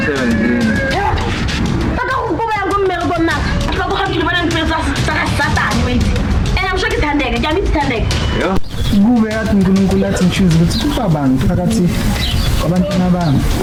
Kube yathi uNkulunkulu athi ngichoose ukuthi ubabani phakathi kwabantwana bami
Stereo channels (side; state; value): both; identical; correlation 1.00